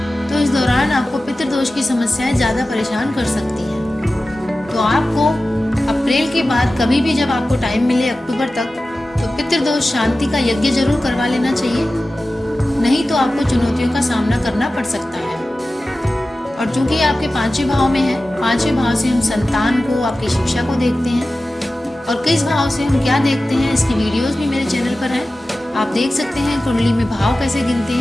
तो इस दौरान आपको पितृ दोष की समस्याएं ज्यादा परेशान कर सकती हैं। तो आपको अप्रैल के बाद कभी भी जब आपको टाइम मिले अक्टूबर तक, तो पितृदोष शांति का यज्ञ जरूर करवा लेना चाहिए, नहीं तो आपको चुनौतियों का सामना करना पड़ सकता है। और चूंकि आपके 5वें भाव में है, 5वें भाव से हम संतान को, आपकी शिक्षा को देखते हैं, और किस भाव से हम क्या देखते हैं इसकी वीडियोस भी मेरे चैनल पर है, आप देख सकते हैं कुंडली में भाव कैसे गिनते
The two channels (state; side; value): normal; both; correlation 0.95